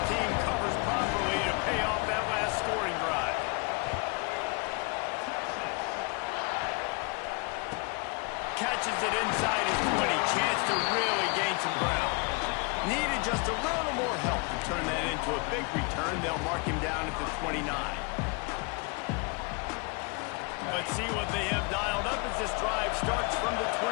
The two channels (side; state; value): right; quieter; 31.3 dB